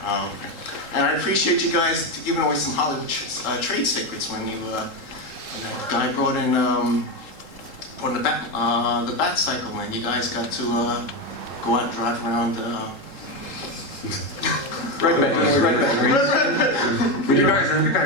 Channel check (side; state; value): right; late; 3.8 ms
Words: And I appreciate you guys giving away some Hollywood trade secrets when you when that guy brought in the bat cycle, and you guys got to go out and drive around. Red Bay. You